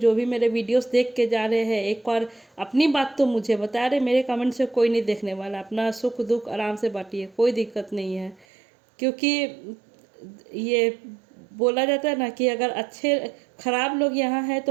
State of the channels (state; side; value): drops out; left; at 8.5 s